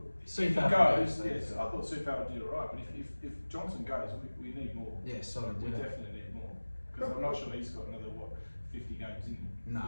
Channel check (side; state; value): both; inverted; correlation -1.00